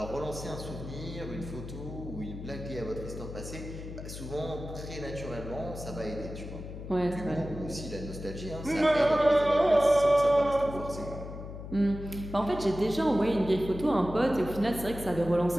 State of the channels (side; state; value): left; noise; hum, 10 dB below the sound